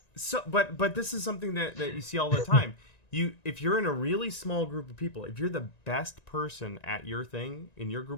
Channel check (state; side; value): late; right; 1.9 ms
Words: so but this is something that you see all the time. If you're in a really small group of people, if you're the best person at your thing in your